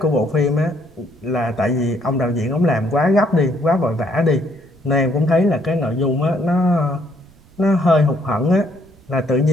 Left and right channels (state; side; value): noise; right; rumble, 28 dB below the sound